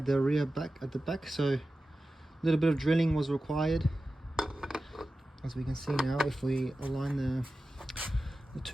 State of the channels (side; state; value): both; normal; correlation 0.94